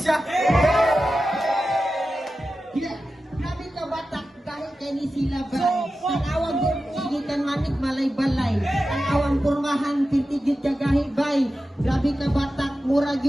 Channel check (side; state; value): both; normal; correlation 0.93